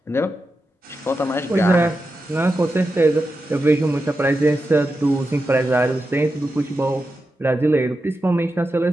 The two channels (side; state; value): both; normal; correlation 0.89